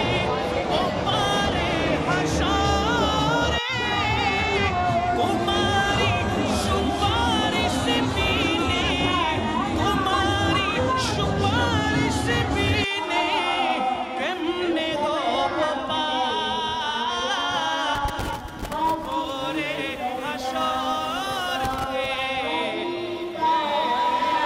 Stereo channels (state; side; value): identical; both; correlation 1.00